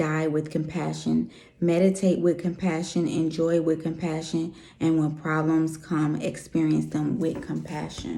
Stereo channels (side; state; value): both; identical; correlation 1.00